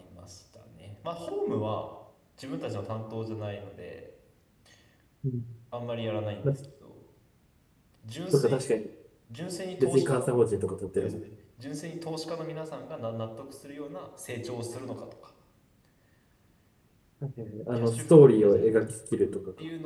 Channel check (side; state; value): both; identical; correlation 1.00